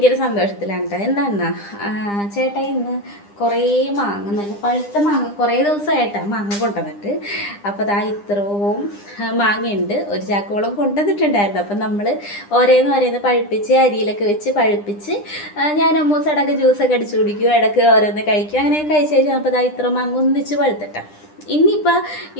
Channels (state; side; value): late; right; 9.9 ms